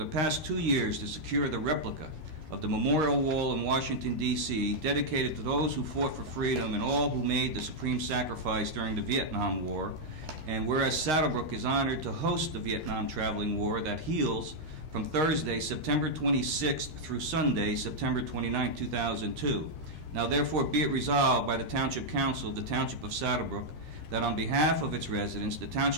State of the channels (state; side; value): late; left; 13 ms